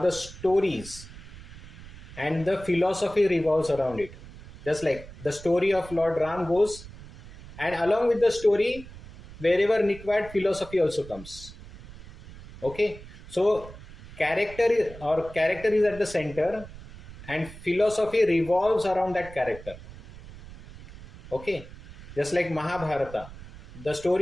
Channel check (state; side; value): noise; right; rumble, 16 dB below the sound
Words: stories, and the philosophy revolves around it. Just like the story of Lord Ram goes, and along with the story, wherever required, philosophy also comes. Okay, so character is at the center, and philosophy revolves around that character. Okay, just like Mahabharata. the